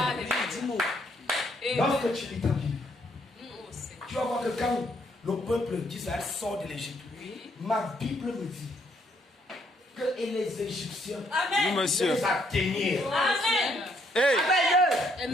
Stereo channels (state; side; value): normal; both; correlation 0.70